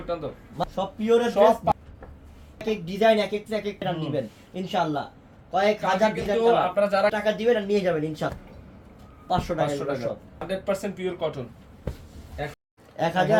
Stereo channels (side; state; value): both; identical; correlation 1.00